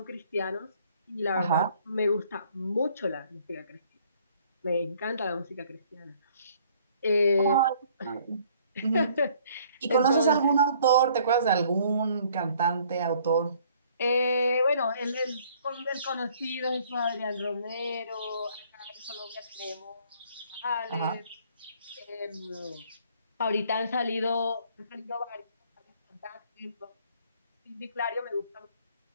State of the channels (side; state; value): both; inverted; correlation -0.60